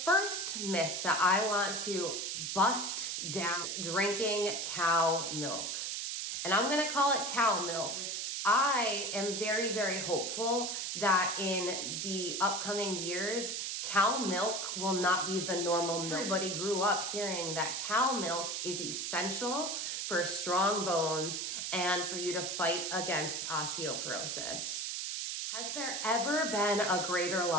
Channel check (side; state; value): right; noise; hiss, 2 dB below the sound